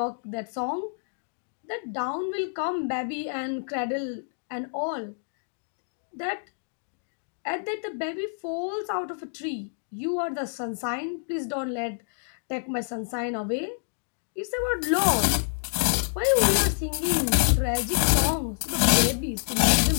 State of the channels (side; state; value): right; silent; digital silence